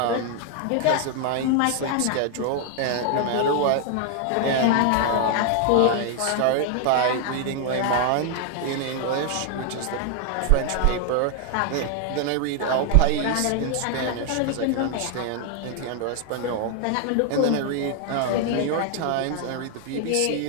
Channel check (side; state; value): both; different; correlation 0.00